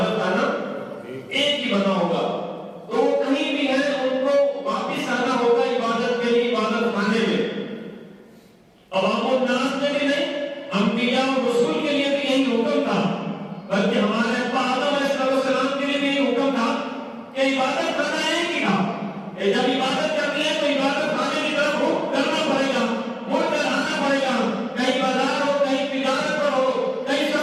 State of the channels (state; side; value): identical; both; correlation 1.00